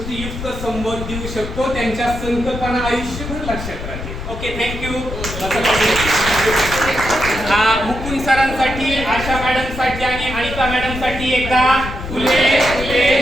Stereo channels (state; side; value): noise; left; rumble, 8 dB below the sound